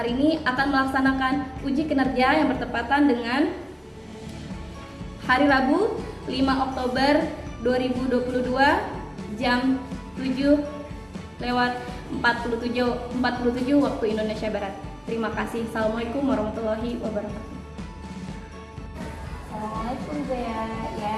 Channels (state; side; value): identical; both; correlation 1.00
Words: ini akan melaksanakan uji kinerja yang bertepatan dengan hari Rabu 5 Oktober 2022 jam 7:47 waktu Indonesia Barat. Terima kasih. Assalamualaikum warahmatullahi wabarakatuh. Assalamualaikum Zea, ya